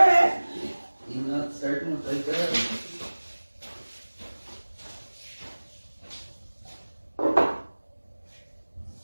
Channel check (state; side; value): inverted; both; correlation -1.00